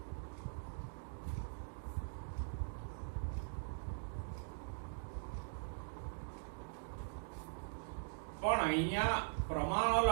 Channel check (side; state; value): left; silent; digital silence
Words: પણ અહીંયા પ્રમાણ